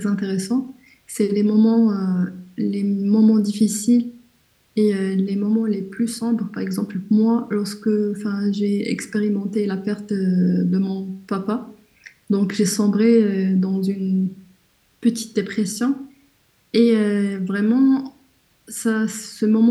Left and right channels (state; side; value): identical; both; correlation 1.00